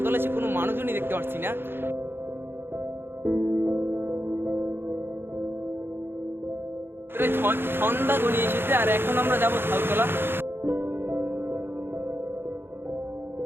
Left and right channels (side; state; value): left; late; 0.10 ms